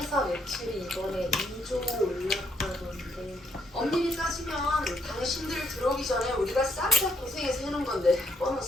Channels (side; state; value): both; normal; correlation 0.71